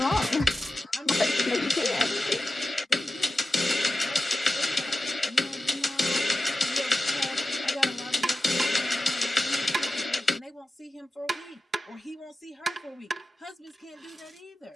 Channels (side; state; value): both; normal; correlation 0.93